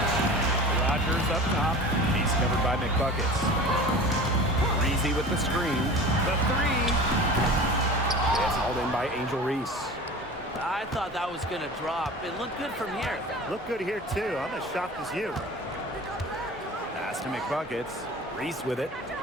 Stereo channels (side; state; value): both; normal; correlation 0.37